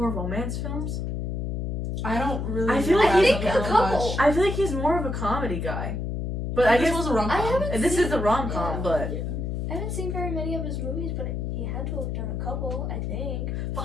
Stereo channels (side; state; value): left; noise; hum, 2 dB below the sound